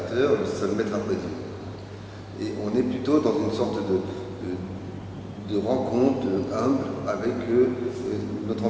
le seul maître après Dieu. Et on est plutôt dans une sorte de rencontre humble avec notre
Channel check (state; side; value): identical; both; correlation 1.00